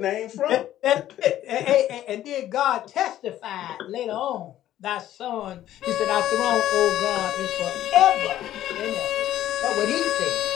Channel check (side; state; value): right; quieter; 12.8 dB